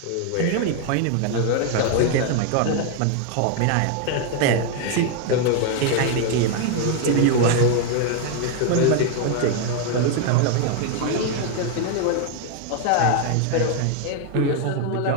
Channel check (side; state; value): both; different; correlation 0.01